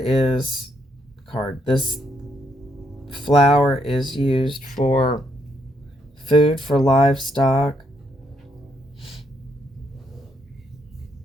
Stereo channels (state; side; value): normal; both; correlation 0.74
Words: this flower is used for food for livestock.